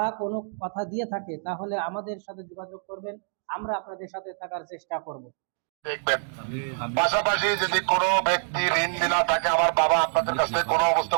কোনো কথা দিয়ে থাকে, তাহলে আমাদের সাথে যোগাযোগ করবেন, আমরা আপনাদের সাথে থাকার চেষ্টা করব। দেখবেন পাশাপাশি যদি কোনো ব্যক্তি ঋণ দিনা থাকে, আমার বাবা আপনাদের কাছে কোনো অবস্থা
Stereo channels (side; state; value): left; silent; 61 dB below the other